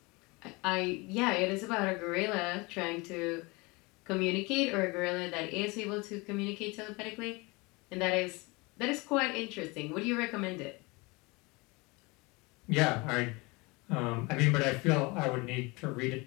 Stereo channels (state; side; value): quieter; right; 25.7 dB